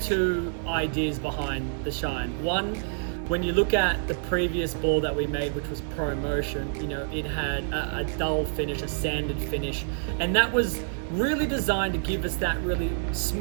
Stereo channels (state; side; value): silent; left; 60 dB below the other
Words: ideas behind the shine. One, when you look at the previous ball that we made, which was Pro Motion, you know, it had a dull finish, a sanded finish, and that was really designed to give us that really